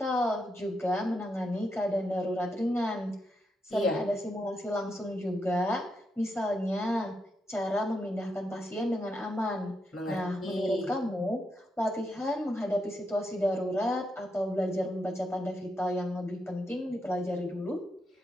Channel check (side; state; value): both; normal; correlation 0.83